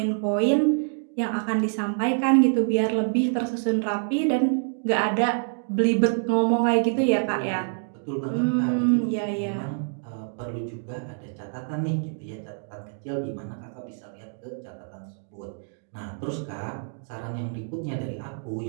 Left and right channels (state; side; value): silent; left; digital silence